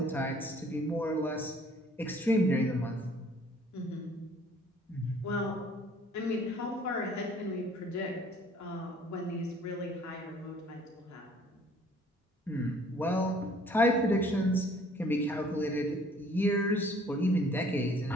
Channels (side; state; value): both; normal; correlation 0.57